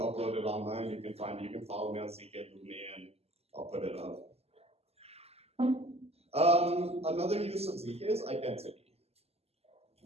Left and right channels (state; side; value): late; left; 0.29 ms